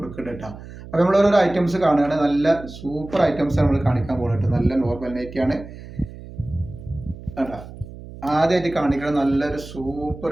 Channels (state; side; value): noise; right; hum, 15 dB below the sound